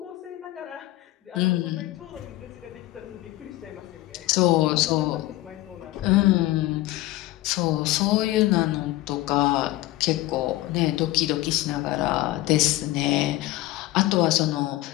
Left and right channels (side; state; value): right; quieter; 17.3 dB